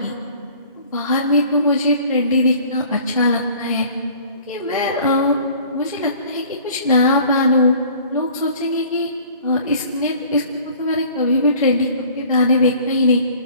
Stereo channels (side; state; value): both; inverted; correlation -0.50